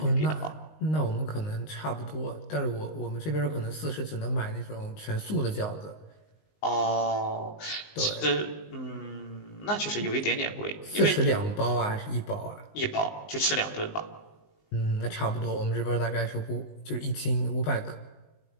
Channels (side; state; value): right; late; 19 ms